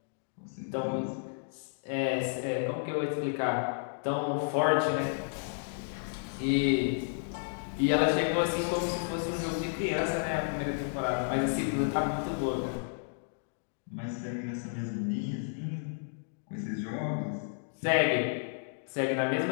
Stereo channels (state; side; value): silent; right; digital silence